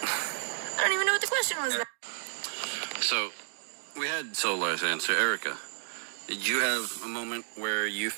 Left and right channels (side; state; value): left; silent; digital silence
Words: I don't even know what the question was. So, we had Solar's answer. Erica, did you have a moment where you